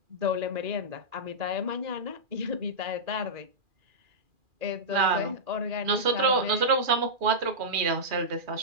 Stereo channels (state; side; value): late; left; 2.4 ms